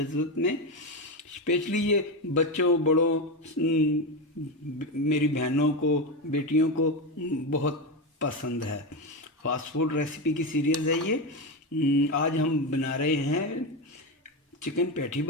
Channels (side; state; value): both; normal; correlation 0.14